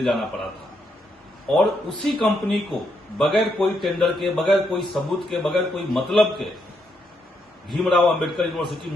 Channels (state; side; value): normal; both; correlation 0.78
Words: जाना पड़ा था। और उसी कंपनी को बगैर कोई टेंडर के, बगैर कोई सबूत के, बगैर कोई मतलब के भीमराव अंबेडकर यूनिवर्सिटी